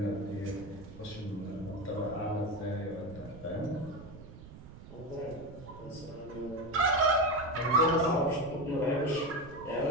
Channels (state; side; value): noise; right; rumble, 16 dB below the sound